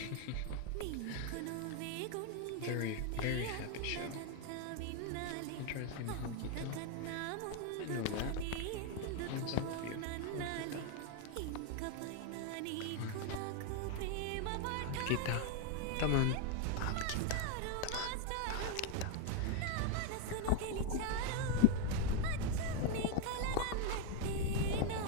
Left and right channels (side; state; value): both; different; correlation 0.01